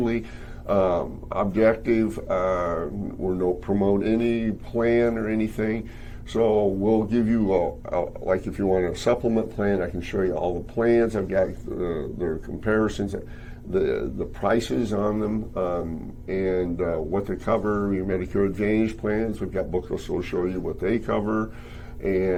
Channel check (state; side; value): identical; both; correlation 1.00